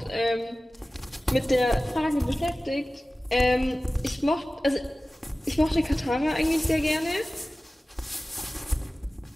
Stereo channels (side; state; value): both; normal; correlation 0.96